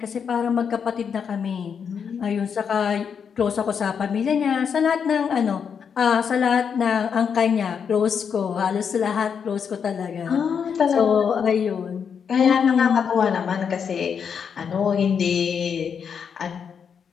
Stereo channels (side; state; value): right; quieter; 6.9 dB